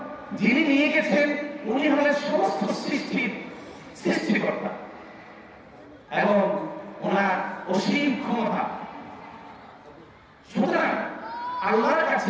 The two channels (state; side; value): identical; both; correlation 1.00